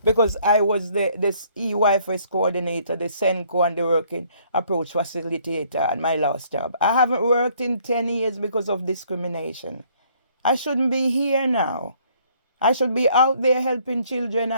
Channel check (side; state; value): both; inverted; correlation -0.63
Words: because I was the this EYFS coordinator, the SENCO and the working approach facilitator at my last job. I haven't worked in 10 years because of discrimination. I shouldn't be here now. I should be out there helping children